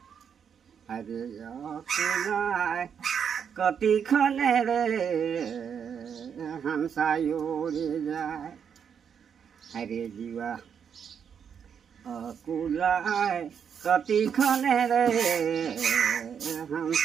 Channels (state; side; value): quieter; left; 7.5 dB